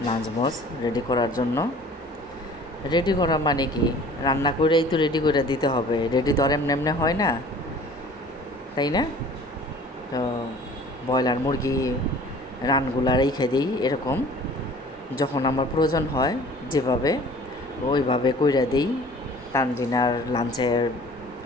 নাজমোজ রেডি করার জন্য। রেডি করা মানে কি, রান্না করেই তো রেডি করে দিতে হবে, রেডি তো আর এমনি এমনি হয় না, তাই না? তো ব্রয়লার মুরগি রানগুলা রেখে দিই এরকম, যখন আমার প্রয়োজন হয় যেভাবে ওইভাবে কইরা দিই। তানজিনার লাঞ্চের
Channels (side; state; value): both; normal; correlation 0.48